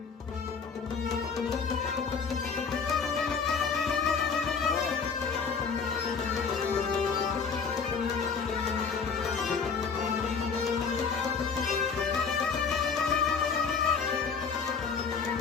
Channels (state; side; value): quieter; right; 5.7 dB